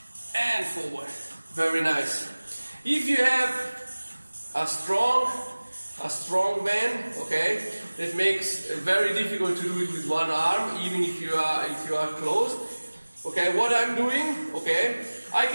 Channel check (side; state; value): both; inverted; correlation -1.00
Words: and forward. Very nice. If you have a strong band, okay, it makes it very difficult to do it with one arm, even if you are closed. Okay, what I'm doing, okay, I